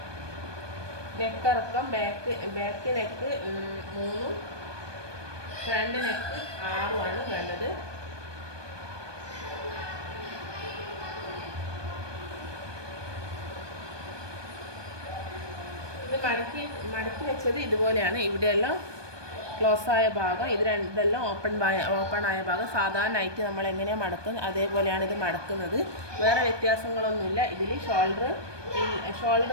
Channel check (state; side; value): late; left; 1.2 ms